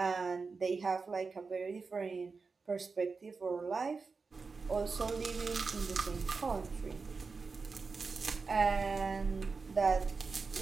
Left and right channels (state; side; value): quieter; left; 4.6 dB